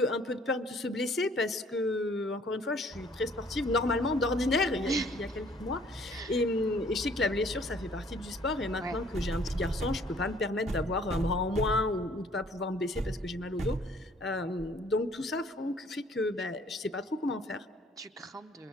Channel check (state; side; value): normal; both; correlation 0.58